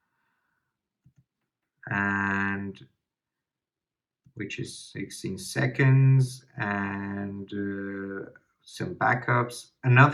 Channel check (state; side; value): identical; both; correlation 1.00